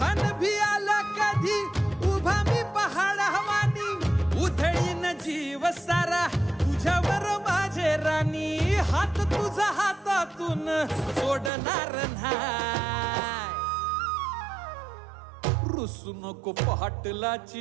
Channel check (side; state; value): left; drops out; at 11.5 s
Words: भी आला कधी उभा मी पहाड हवानी उधळीन जीव सारा तुझ्यावर माझे राणी हात तुझा हातातून सोडणार नाही रुसू नको